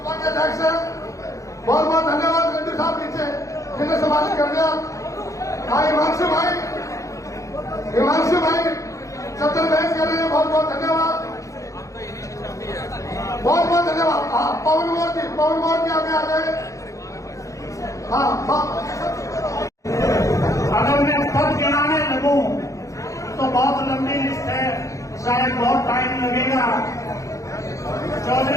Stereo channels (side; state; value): right; late; 0.15 ms